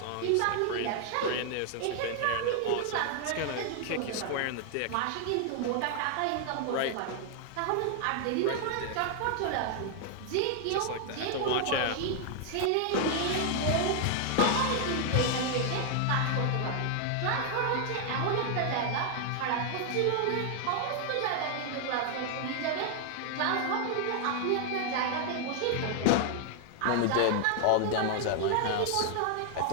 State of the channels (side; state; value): both; different; correlation 0.00